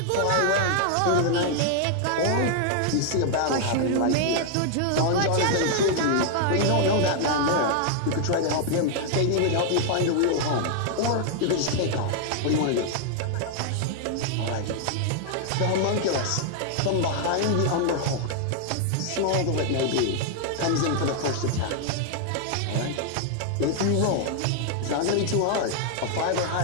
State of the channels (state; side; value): different; both; correlation 0.00